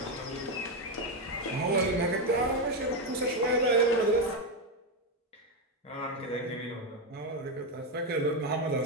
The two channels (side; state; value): both; normal; correlation 0.07